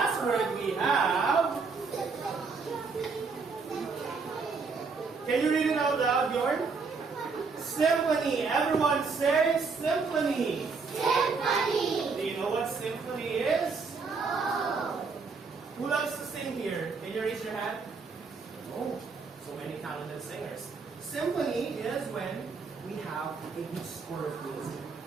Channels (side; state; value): left; quieter; 4.8 dB